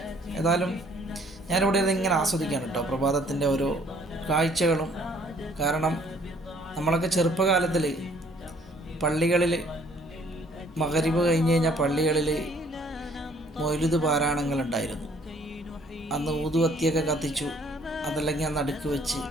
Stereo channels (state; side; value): normal; both; correlation 0.60